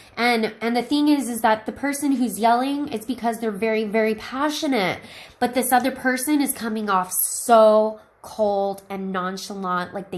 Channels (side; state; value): both; identical; correlation 1.00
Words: And the thing is that the person who's yelling, it's because they're very, very passionate. But this other person is coming off so cold and nonchalant, like